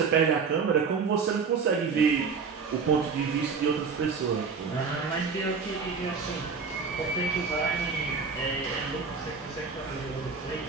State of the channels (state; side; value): quieter; left; 5.4 dB